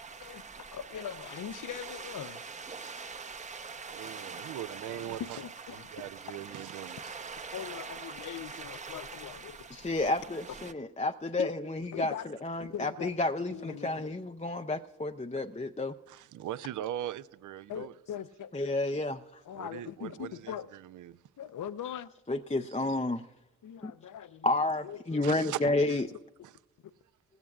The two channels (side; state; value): both; normal; correlation 0.32